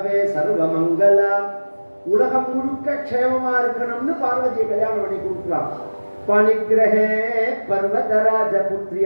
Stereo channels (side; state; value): both; inverted; correlation -1.00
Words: சர்வமங்கலாம். உலகம் முழுக்க க்ஷேமமா இருக்கணும்னு பார்வதியை கல்யாணம் பண்ணி கொடுக்கலாம். பணிகிரஹே பர்வதராஜ